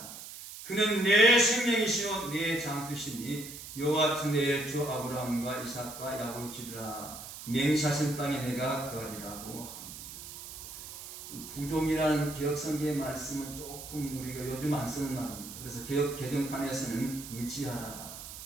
그는 내 생명이시오 내 장수시니 여호와 내 주 아브라함과 이삭과 야곱의 주라 맹세하신 땅에 내가 거하리라고 합니다. 부종이라는 개혁성경의 말씀은 조금 우리가 요즘 안 쓰는 말입니다. 그래서 개혁 개정판에서는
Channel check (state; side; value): noise; right; hiss, 12 dB below the sound